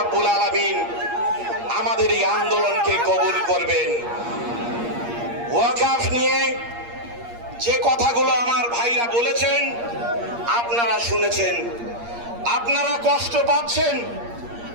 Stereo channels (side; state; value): left; late; 8.5 ms